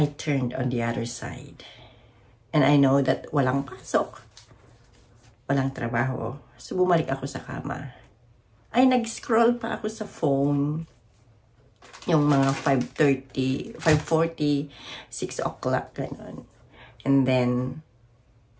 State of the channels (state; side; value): identical; both; correlation 1.00